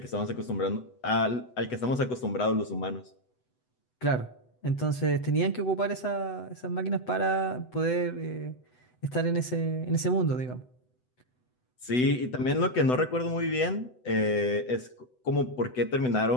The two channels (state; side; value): late; right; 8.0 ms